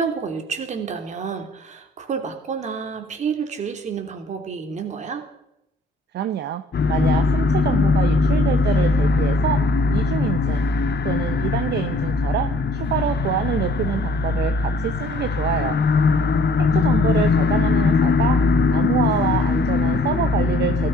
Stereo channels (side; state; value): both; normal; correlation 0.57